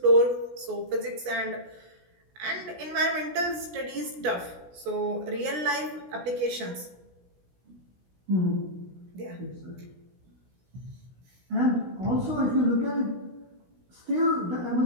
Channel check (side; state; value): left; late; 17 ms